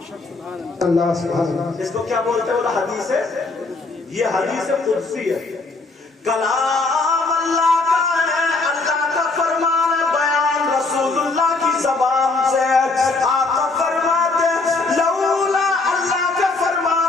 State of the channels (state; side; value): quieter; right; 3.6 dB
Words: اللہ سبحان اللہ. اس کو کیا بولتے ہیں؟ وہ حدیث ہے، یہ حدیث قدسی ہے. کلام اللہ کا ہے، اللہ کا فرمان ہے، بیان رسول اللہ کی زبان سے. آقا فرماتے ہیں لولا، اللہ کا